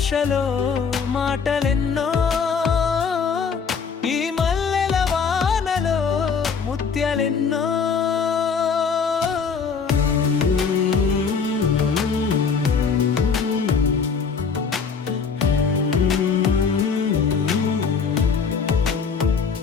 మాటలెన్నో, ఈ మల్లెల వానలో ముత్యాలెన్నో.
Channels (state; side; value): quieter; right; 5.8 dB